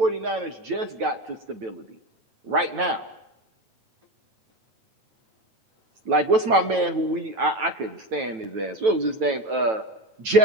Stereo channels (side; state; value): left; late; 9.1 ms